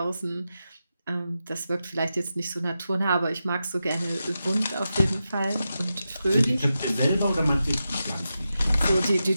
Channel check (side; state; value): both; inverted; correlation -0.90